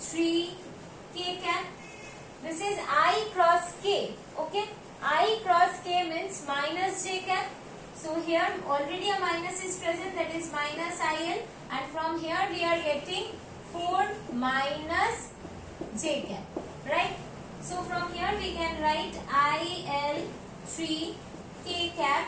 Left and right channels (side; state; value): both; identical; correlation 1.00